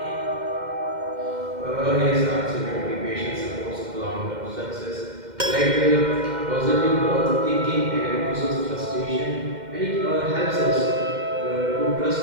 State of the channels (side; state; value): left; late; 2.1 ms